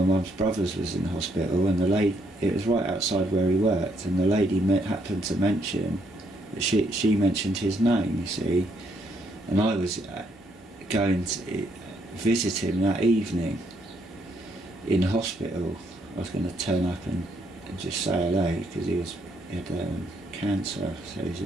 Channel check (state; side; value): normal; both; correlation 0.73